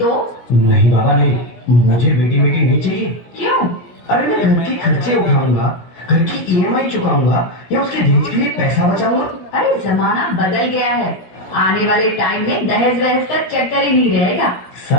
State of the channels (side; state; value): right; late; 17 ms